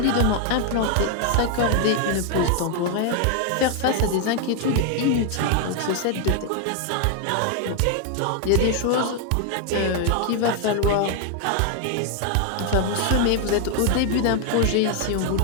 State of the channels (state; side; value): different; both; correlation 0.00